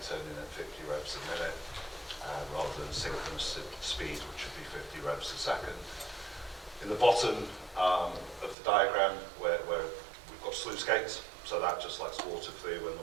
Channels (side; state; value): left; drops out; at 8.6 s